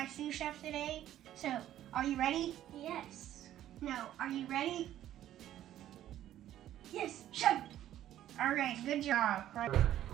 sous chef today. So, are you ready? Yes. No, are you ready? Yes, chef. All right, good job. Right.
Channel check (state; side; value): quieter; left; 12.3 dB